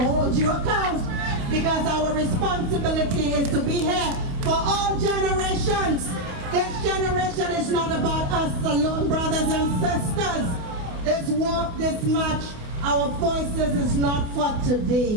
hold you account. Because our responsibility is to be here for all generations. This generation is not about us alone, brothers and sisters. This walk, this march, our voices is not for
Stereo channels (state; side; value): late; left; 28 ms